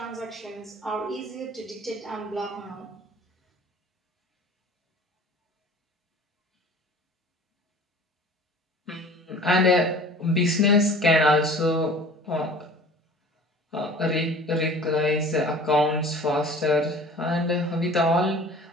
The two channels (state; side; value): normal; both; correlation 0.44